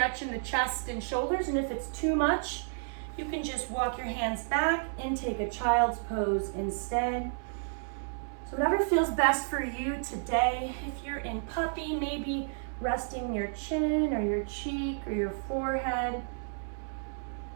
in the chest and shoulders. And if it's too much, you can just walk your hands back and take a child's pose instead. So whatever feels best for you today. If you're in puppy, maybe resting your chin or your cheek or your forehead.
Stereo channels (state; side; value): silent; left; 57 dB below the other